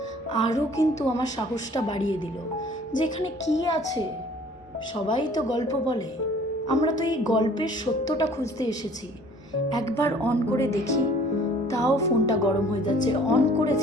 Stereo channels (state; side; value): normal; both; correlation 0.53